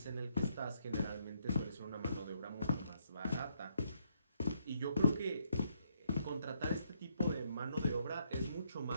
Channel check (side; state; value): both; inverted; correlation -0.75